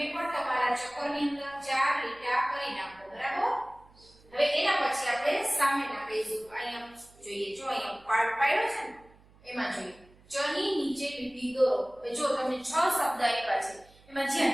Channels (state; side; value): noise; right; hum, 27 dB below the sound